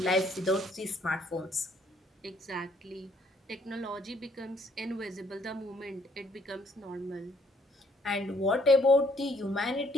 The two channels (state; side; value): normal; both; correlation 0.66